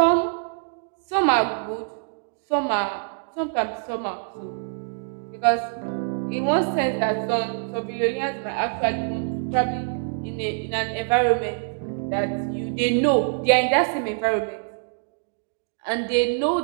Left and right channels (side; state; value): left; silent; digital silence